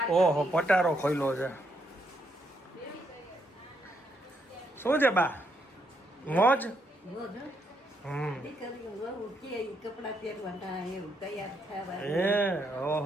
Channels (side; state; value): both; normal; correlation 0.76